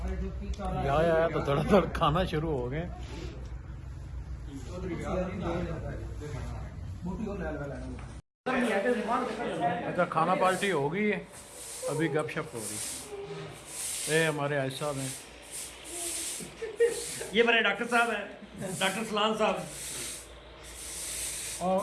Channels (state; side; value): identical; both; correlation 1.00